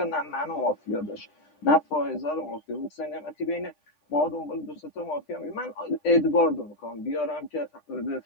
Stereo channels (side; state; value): right; late; 9.9 ms